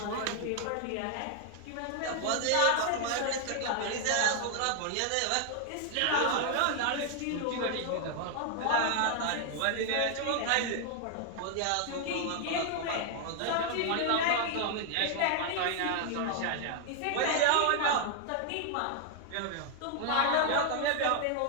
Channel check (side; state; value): both; different; correlation 0.00